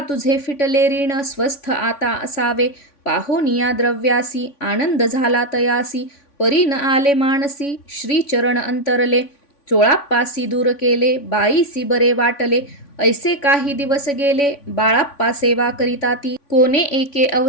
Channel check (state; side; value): late; right; 3.5 ms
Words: फिटले ऋण स्वस्थ आता असावे. पाहोनिया द्रव्यासी आनंद झाला तयासी. परी न आले मानसी श्रीचरण अंतरले. चोळाप्पासी दूर केले बाईसी बरे वाटले. ऐसे काही दिवस गेले बाळाप्पा सेवा करिता ती. कोणे एके